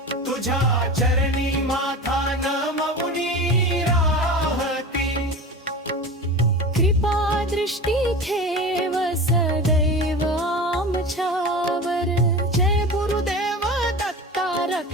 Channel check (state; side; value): normal; both; correlation 0.31